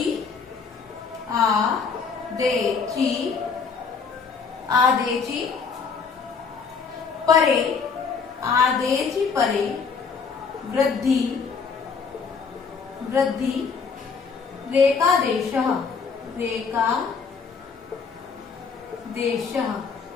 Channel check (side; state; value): right; quieter; 5.5 dB